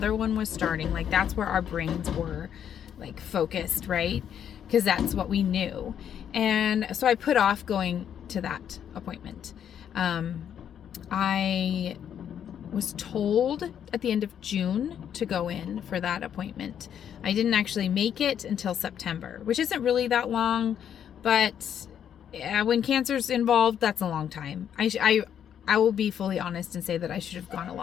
one was starting. Like, that's where our brains were like focused, right? Because that's what we knew. And so I put off going to that appointment. I was told at the end of June to go in for that appointment. I didn't actually make it until September, which isn't really that long, but when cancer's involved, that's a long time. I will be fully honest and say that I should have gone a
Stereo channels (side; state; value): right; quieter; 9.1 dB